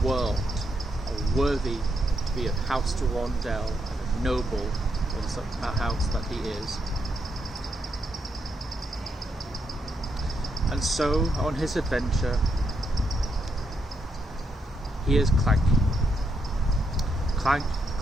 world how worthy to be of House de Rondel and a noble in such a house that he is. And so, on his adventure, he is clanking. Clank,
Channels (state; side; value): normal; both; correlation 0.79